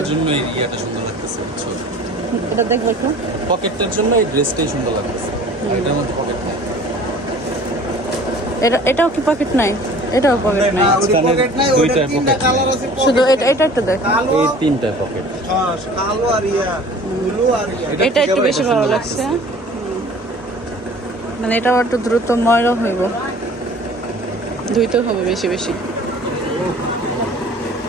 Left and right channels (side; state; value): both; normal; correlation 0.47